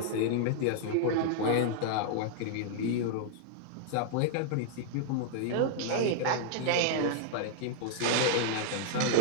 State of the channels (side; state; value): both; different; correlation 0.00